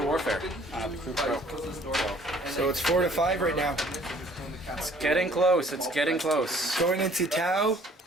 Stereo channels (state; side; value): normal; both; correlation 0.57